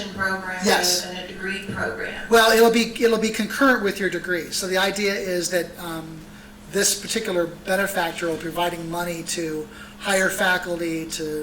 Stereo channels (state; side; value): identical; both; correlation 1.00